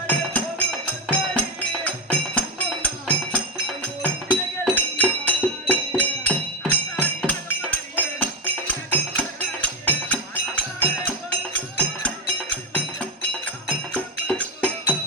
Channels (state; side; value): normal; both; correlation 0.12